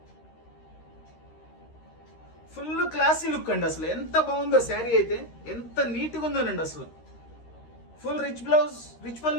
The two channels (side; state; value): right; late; 13 ms